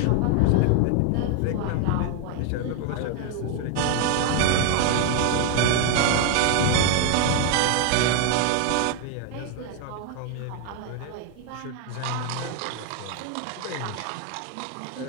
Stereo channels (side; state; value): both; different; correlation 0.01